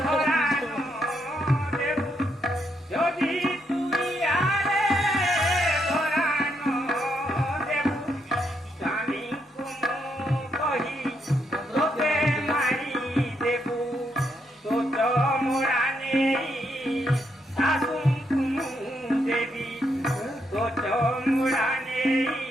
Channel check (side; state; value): both; normal; correlation 0.78